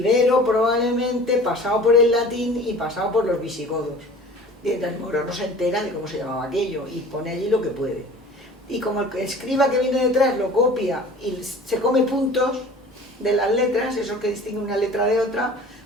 probablemente, pasado por el latín y pasado por los visigodos. Y el moro no se entera de cómo se llamaba aquello y pone allí lo que puede. Y como el escriba que viene detrás lo copia y se come puntos de las letras, esos que distinguen una letra de otra,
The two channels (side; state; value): both; normal; correlation 0.43